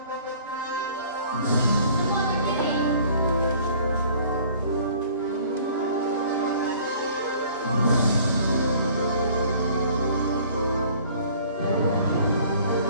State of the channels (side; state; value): both; inverted; correlation -0.53